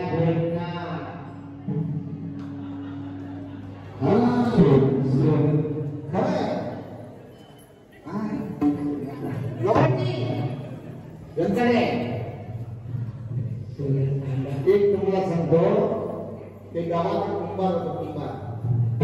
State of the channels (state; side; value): identical; both; correlation 1.00